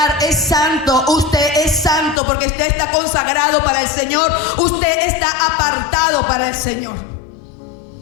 es santo. Usted es santo porque usted está consagrado para el Señor. Usted está apartado para el Señor.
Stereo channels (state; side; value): drops out; right; at 2.2 s